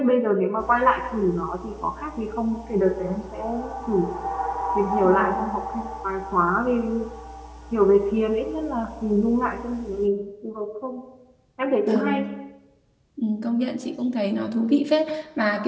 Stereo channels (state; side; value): identical; both; correlation 1.00